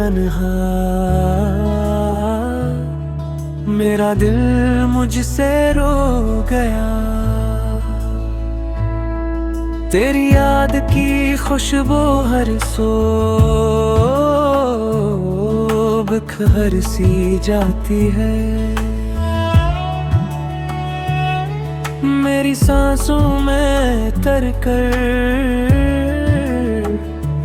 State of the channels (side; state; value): both; identical; correlation 1.00